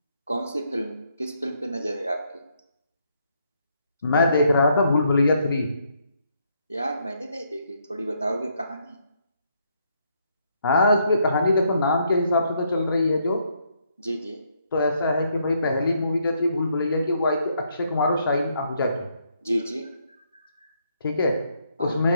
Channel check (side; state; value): both; inverted; correlation -0.73